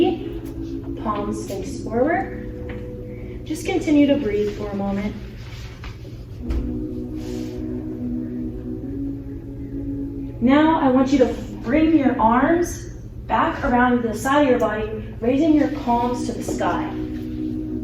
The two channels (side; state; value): both; identical; correlation 1.00